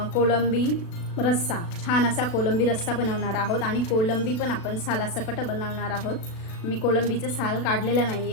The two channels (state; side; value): late; right; 36 ms